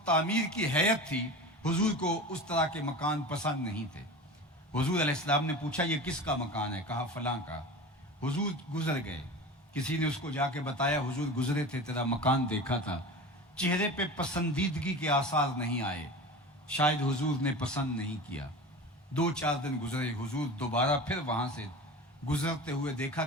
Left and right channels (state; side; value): normal; both; correlation 0.32